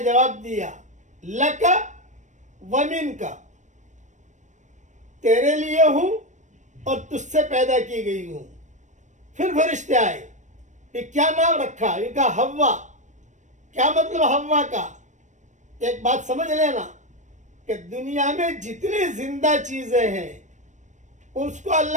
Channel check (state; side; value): late; left; 0.35 ms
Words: دیا، لکا ومن کا، تیرے لیے ہوں اور تجھ سے پیدا کی گئی ہوں. پھر فرشتے آئے، یہ کیا نام رکھا؟ یہ کہا حوا. کیا مطلب حوا کا؟ ایک بات سمجھ لینا کہ دنیا میں جتنی زندہ چیزیں ہیں اس کو